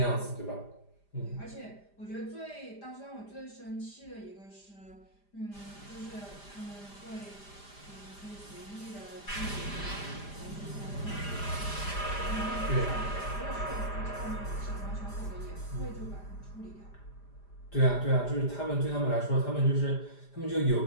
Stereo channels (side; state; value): right; late; 5.0 ms